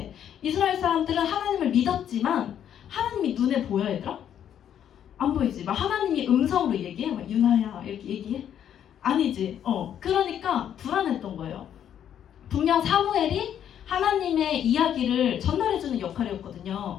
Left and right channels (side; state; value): right; quieter; 9.7 dB